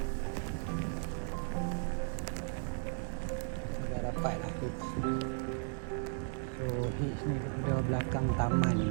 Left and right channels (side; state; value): left; silent; 54 dB below the other